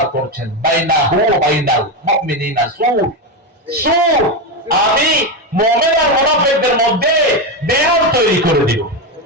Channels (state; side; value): normal; both; correlation 0.12